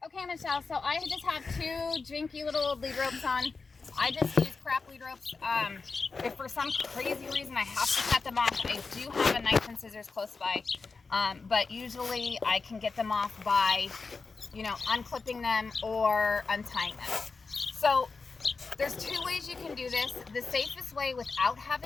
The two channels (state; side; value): quieter; right; 4.4 dB